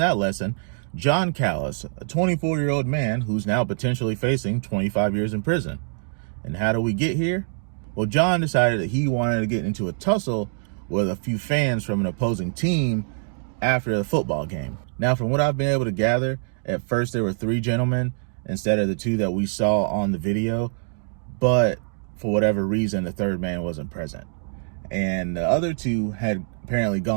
that lesson. John Callis, a 24-year-old man who's now potentially facing 25 years in prison. And how do we get here? Well, John decided that he wanted to get into a tussle with a few fans from an opposing team after the football game. Now, from what I've been able to gather, at first there were 3 gentlemen instead of the 2 that we saw on the video, but for whatever reason, the 3rd man wasn't present. And the other 2 had apparently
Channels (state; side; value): silent; left; digital silence